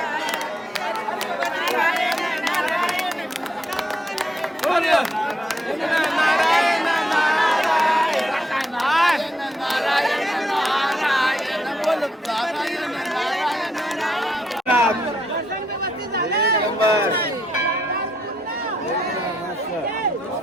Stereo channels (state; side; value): normal; both; correlation 0.78